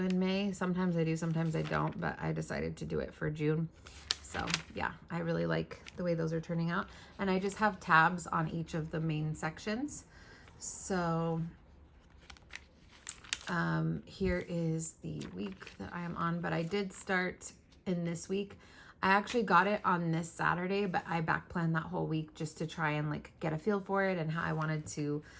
May. Sometimes I do, sometimes I don't, but I decided to do it for June. So yeah, I really like the way those are turning out. And I just have tabs on each of the main sections. So here is the week that I am on, but I did start in this week. I actually got it on this Saturday, but I back planned that whole week just to try and get a feel for it and how I wanted to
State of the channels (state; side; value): identical; both; correlation 1.00